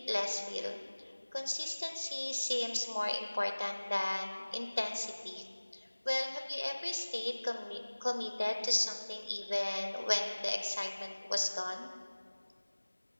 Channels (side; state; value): both; inverted; correlation -1.00